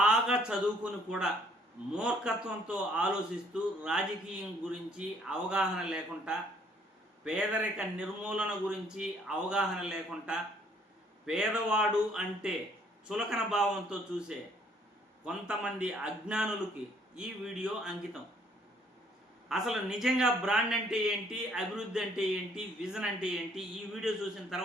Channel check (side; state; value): both; normal; correlation 0.63